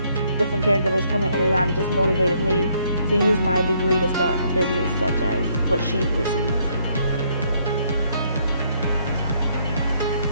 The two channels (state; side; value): inverted; both; correlation -0.69